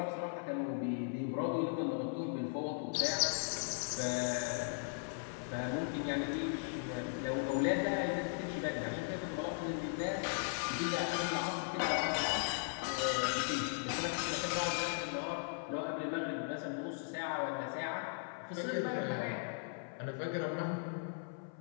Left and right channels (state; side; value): silent; right; 52 dB below the other